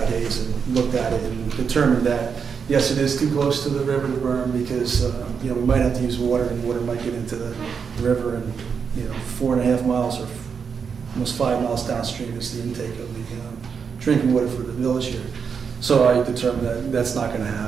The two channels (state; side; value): quieter; left; 6.3 dB